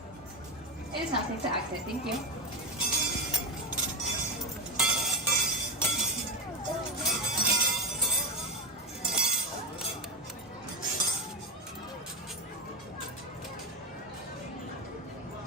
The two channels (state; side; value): normal; both; correlation 0.15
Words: It is now safe to exit. Thank you.